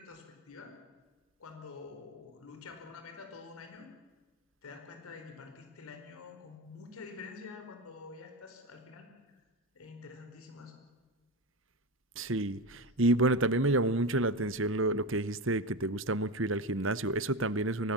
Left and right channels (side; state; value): both; normal; correlation 0.19